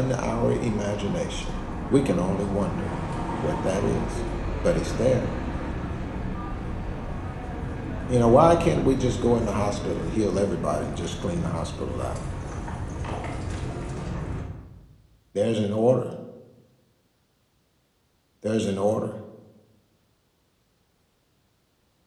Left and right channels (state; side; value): identical; both; correlation 1.00